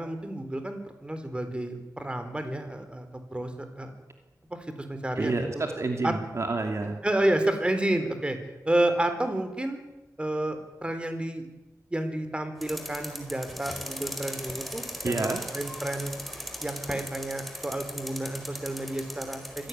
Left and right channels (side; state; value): both; normal; correlation 0.92